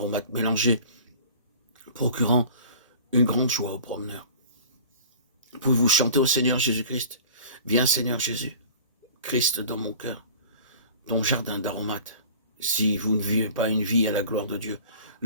mélangés, procurant une grande joie aux promeneurs. Pouvez-vous chanter au Seigneur Jésus-Christ? Viens Seigneur Jésus, Christ dans mon cœur, ton jardin d'aromates. Si vous ne vivez pas une vie à la gloire de Dieu,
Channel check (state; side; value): inverted; both; correlation -0.43